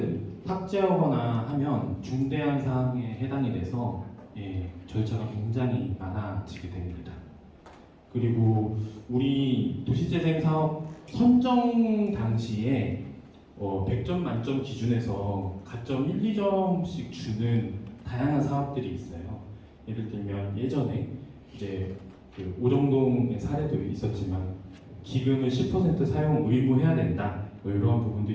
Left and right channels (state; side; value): identical; both; correlation 1.00